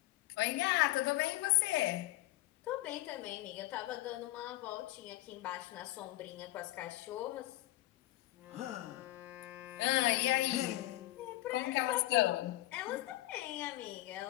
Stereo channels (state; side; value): quieter; right; 17.5 dB